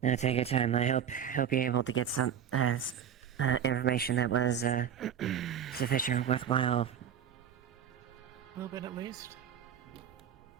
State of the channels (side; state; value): left; quieter; 8.8 dB